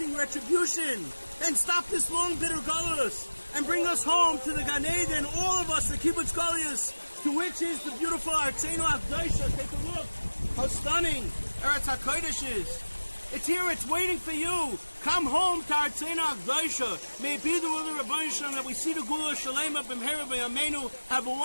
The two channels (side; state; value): both; inverted; correlation -1.00